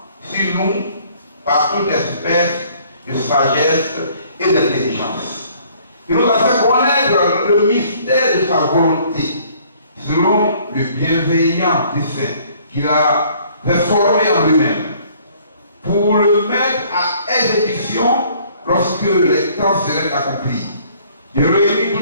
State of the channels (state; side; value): inverted; both; correlation -0.59